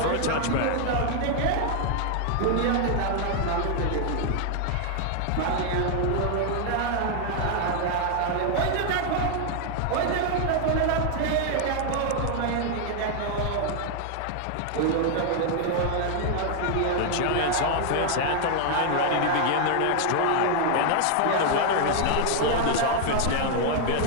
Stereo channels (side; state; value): both; different; correlation 0.00